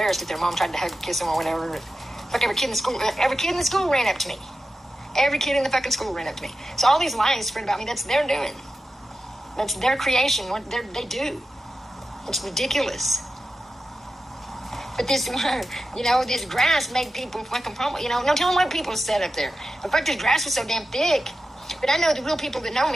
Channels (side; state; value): both; normal; correlation 0.92